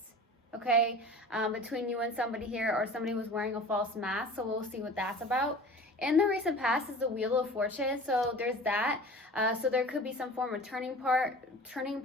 okay, between you and somebody here, or somebody was wearing a false mask, so we'll see what that's about. In the recent past is the Wheel of Fortune, so there's that. So there could be some form of turning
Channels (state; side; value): normal; both; correlation 0.40